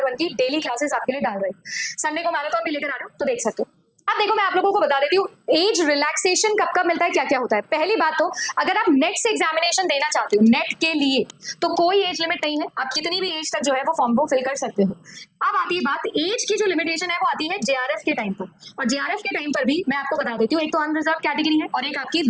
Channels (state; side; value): identical; both; correlation 1.00